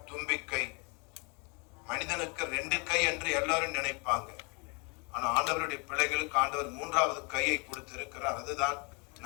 தும்பிக்கை, மனிதனுக்கு 2 கை என்று எல்லாரும் நினைப்பாங்க. ஆனா ஆண்டவருடைய பிள்ளைகளுக்கு ஆண்டவர் 3வது கையை கொடுத்திருக்கிறார். அதுதான்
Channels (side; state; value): right; quieter; 32.5 dB